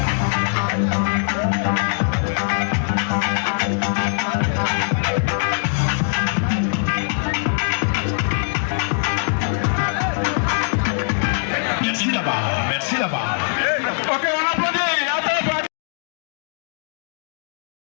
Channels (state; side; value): silent; right; 65 dB below the other